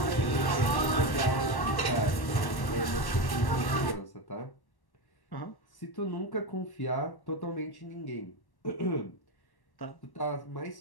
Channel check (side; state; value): right; late; 1.1 ms